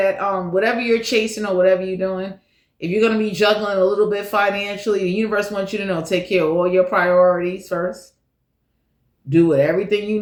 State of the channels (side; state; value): both; identical; correlation 1.00